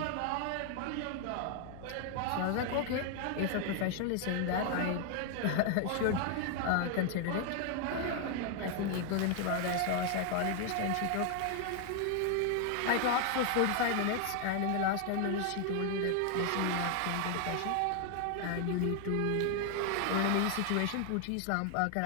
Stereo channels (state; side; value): different; both; correlation 0.00